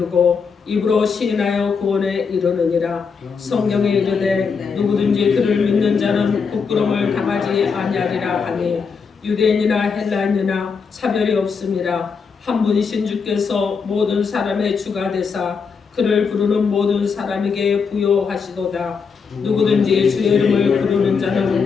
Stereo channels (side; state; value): right; quieter; 5.6 dB